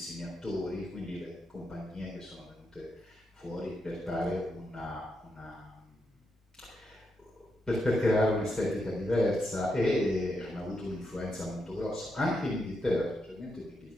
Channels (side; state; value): both; normal; correlation 0.83